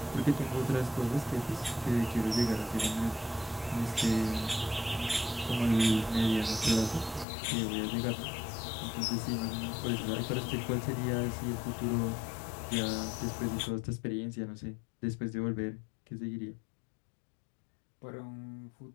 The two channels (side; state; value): right; drops out; at 7.2 s